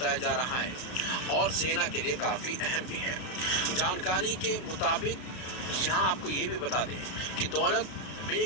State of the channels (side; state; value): right; late; 32 ms